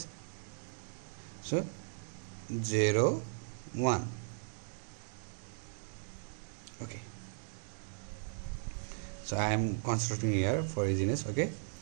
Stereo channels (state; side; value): silent; left; digital silence